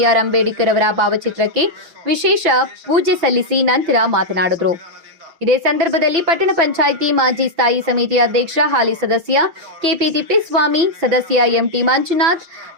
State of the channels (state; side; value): late; left; 6.0 ms